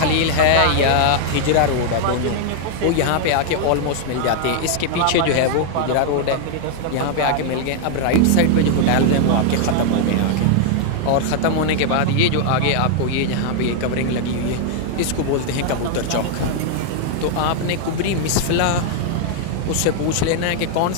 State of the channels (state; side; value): different; both; correlation 0.00